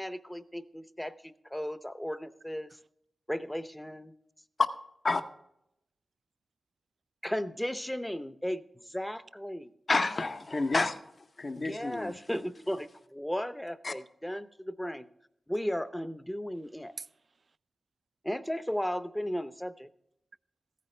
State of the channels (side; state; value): both; normal; correlation 0.98